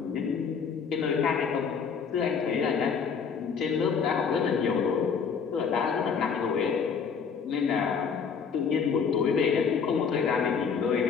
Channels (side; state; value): right; quieter; 6.2 dB